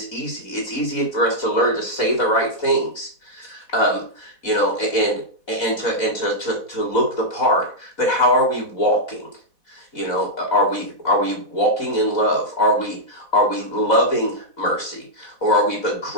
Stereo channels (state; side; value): late; right; 4.1 ms